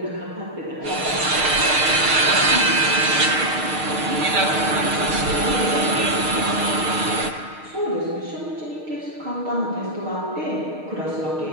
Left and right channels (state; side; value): late; left; 6.5 ms